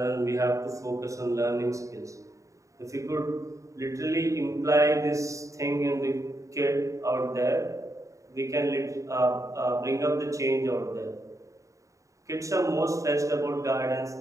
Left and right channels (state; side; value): late; left; 0.16 ms